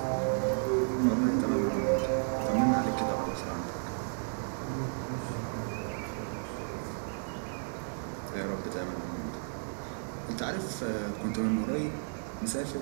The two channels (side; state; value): left; silent; digital silence